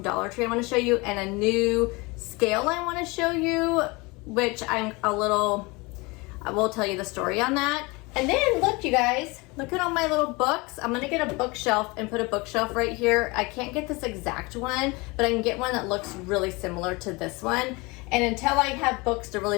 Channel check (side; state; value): right; quieter; 25.4 dB